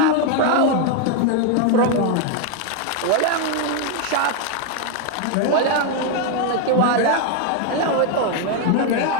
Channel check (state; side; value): different; both; correlation 0.01